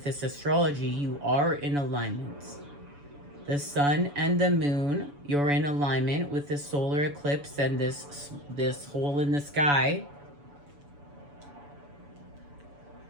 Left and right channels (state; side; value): late; left; 7.0 ms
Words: this astrology, you are in alignment. The sun and the moon, you're in alignment with the solar eclipse and this hole in the sky